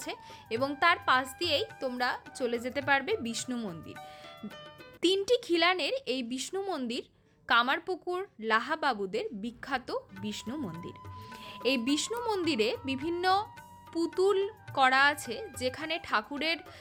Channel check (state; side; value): identical; both; correlation 1.00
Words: এবং তার পাশ দিয়েই তোমরা চলে যেতে পারবে বিষ্ণু মন্দির। 3টি খিলানের এই বিষ্ণু মন্দির কামারপুকুর লাহা বাবুদের বিখ্যাত বিষ্ণু মন্দির। এই বিষ্ণু মন্দিরে বিভিন্ন পুতুল করা আছে, যেখানে ঠাকুরের